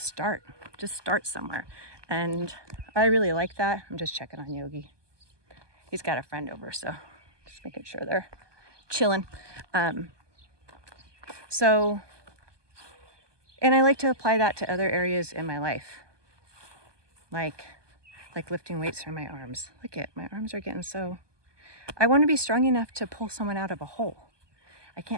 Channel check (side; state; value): left; late; 1.2 ms